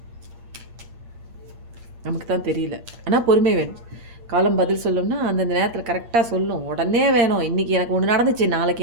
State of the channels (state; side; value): late; left; 8.6 ms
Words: நமக்கு தான் தெரியல. ஆனால் பொறுமை வேணும். காலம் பதில் சொல்லணும்னா அந்தந்த நேரத்தில் கரெக்டாக சொல்லும். உடனே வேணும். இன்றைக்கி எனக்கு ஒன்று நடந்துச்சு,